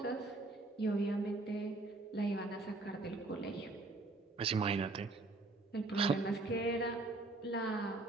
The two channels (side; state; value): left; quieter; 3.1 dB